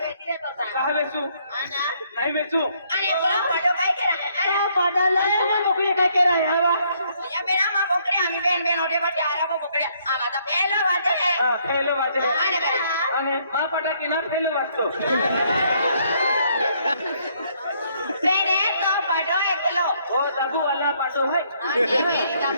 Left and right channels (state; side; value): inverted; both; correlation -0.68